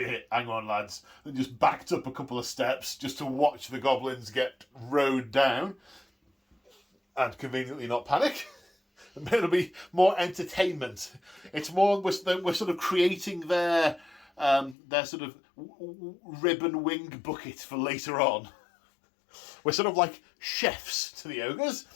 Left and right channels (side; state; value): right; drops out; at 14.8 s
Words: on lads, and just backed up a couple of steps just to watch the Goblins get rowed down and conveniently not panic. It'll be more entertainment. It's more we're sort of creating their sort of ribbon wing bucket for later on. We're sort of like chefs to the ogres.